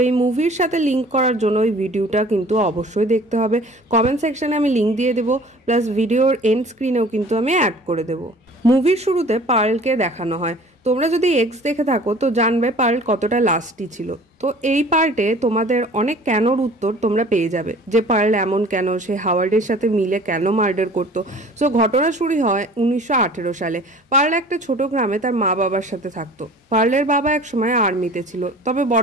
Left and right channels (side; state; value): both; normal; correlation 0.47